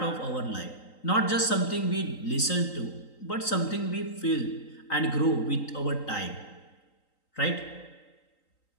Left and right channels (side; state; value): right; late; 3.9 ms